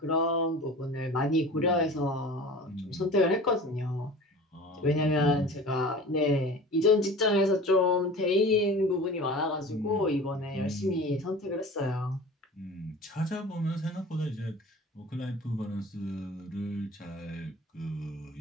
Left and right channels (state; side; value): normal; both; correlation 0.39